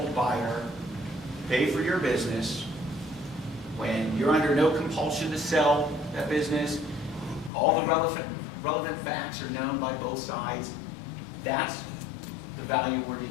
buyer pay for your business when you're under no compulsion to sell that business, all the relevant facts are known by both sides. That's the value we're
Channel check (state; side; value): drops out; right; at 7.5 s